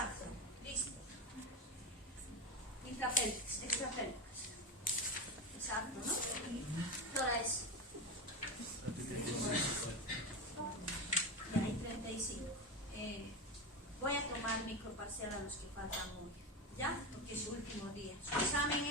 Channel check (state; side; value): normal; both; correlation 0.17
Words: Listo. Intrapélvicas, extrapélvicas. Exacto, ¿no? ¿Qué hora es? Ya hay 35. Voy a tomar microparcial a los que faltan hoy, ¿ya? Porque es su último día. Su examen